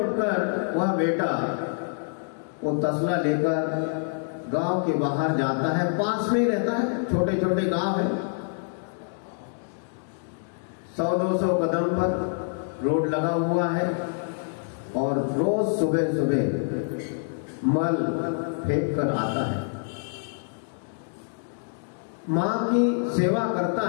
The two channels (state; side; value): silent; right; digital silence